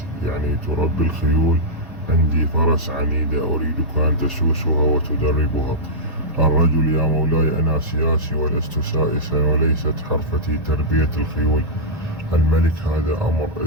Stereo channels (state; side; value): normal; both; correlation -0.11